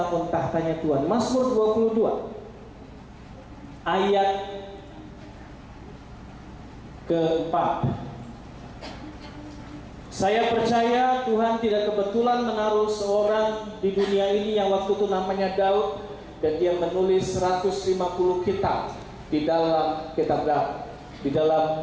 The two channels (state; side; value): identical; both; correlation 1.00